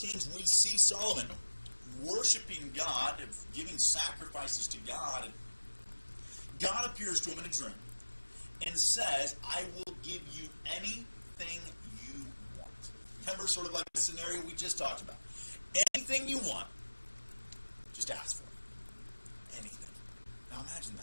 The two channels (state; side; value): inverted; both; correlation -1.00